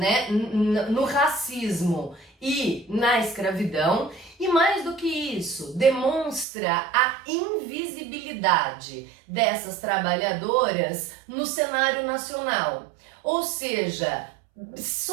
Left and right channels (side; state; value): left; drops out; at 6.5 s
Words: no racismo e na escravidão, e mais do que isso, demonstra a invisibilidade dessas trabalhadoras no cenário nacional. Ou seja,